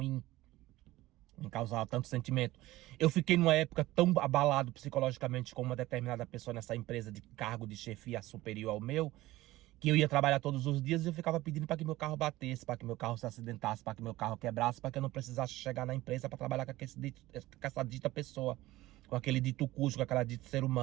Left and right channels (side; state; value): left; quieter; 17.4 dB